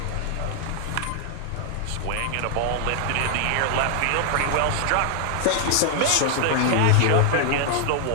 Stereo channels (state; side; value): different; both; correlation 0.00